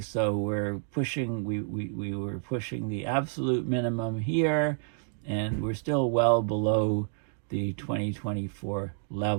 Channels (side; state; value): left; silent; digital silence